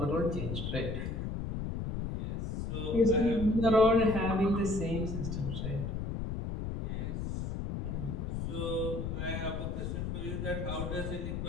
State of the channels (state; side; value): noise; left; rumble, 3 dB below the sound